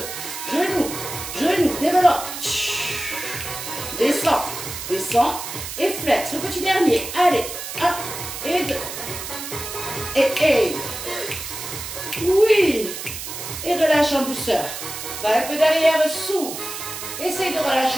Genou. Genou. Développe. Descends. Descends. Et flex. Le petit dernier. Allez. 1 et 2. Et. Oui. Et relâche en douceur. Va un peu derrière, souffle. Essaye de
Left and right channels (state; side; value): noise; right; hiss, 8 dB below the sound